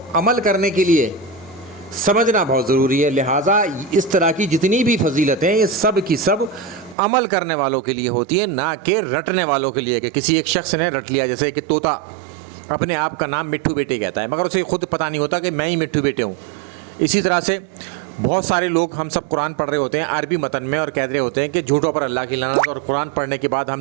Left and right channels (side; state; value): left; drops out; at 7.0 s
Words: عمل کرنے کے لیے سمجھنا بہت ضروری ہے، لہٰذا اس طرح کی جتنی بھی فضیلتیں یہ سب کی سب عمل کرنے والوں کے لیے ہوتی ہیں، نہ کہ رٹنے والوں کے لیے۔ کہ کسی ایک شخص نے رٹ لیا، جیسے کہ طوطا اپنے آپ کا نام مٹھو بیٹے کہتا ہے، مگر اسے خود پتہ نہیں ہوتا کہ میں ہی مٹھو بیٹے ہوں۔ اسی طرح سے بہت سارے لوگ، ہم سب قرآن پڑھ رہے ہوتے ہیں عربی متن میں، اور کہہ رہے ہوتے ہیں کہ جھوٹوں پر اللہ کی لعنت، اور قرآن پڑھنے کے بعد